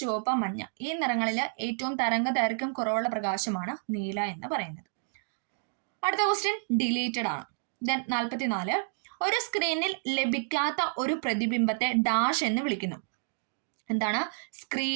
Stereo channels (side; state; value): left; silent; digital silence